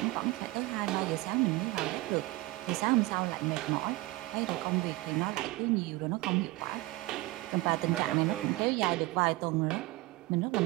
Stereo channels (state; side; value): quieter; left; 20.3 dB